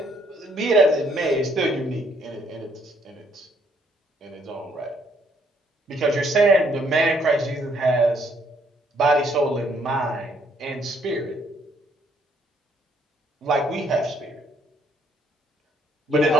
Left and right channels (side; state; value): both; normal; correlation 0.68